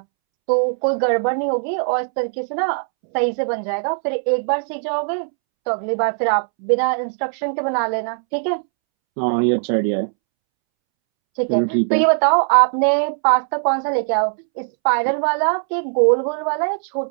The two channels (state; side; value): silent; left; 66 dB below the other